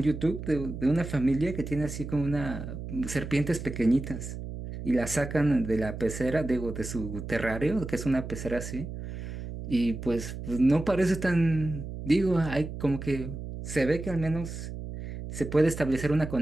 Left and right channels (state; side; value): noise; right; hum, 8 dB below the sound